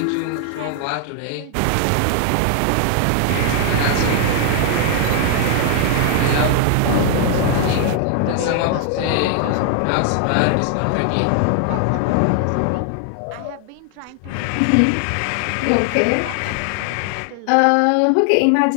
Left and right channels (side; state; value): both; different; correlation 0.00